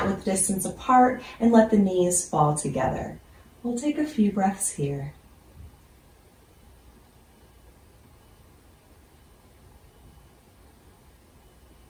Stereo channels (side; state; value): both; identical; correlation 1.00